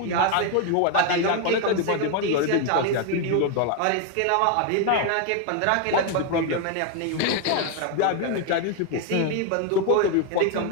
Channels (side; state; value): both; different; correlation 0.01